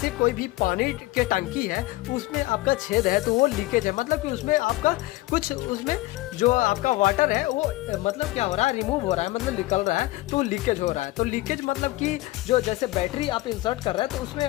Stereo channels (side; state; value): right; quieter; 18.8 dB